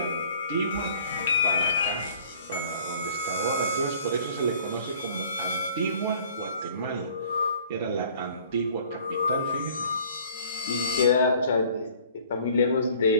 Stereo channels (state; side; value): inverted; both; correlation -0.54